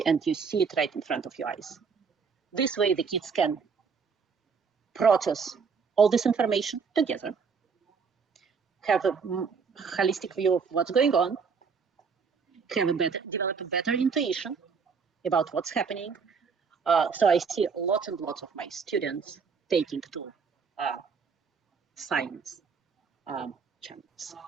and you see it right in front of your eyes. This way, the kids can process all this information together, have a holistic view of what's going on, have a better intuition about what's happening. So I see lots and lots of my students taking to science channels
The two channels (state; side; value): quieter; left; 5.6 dB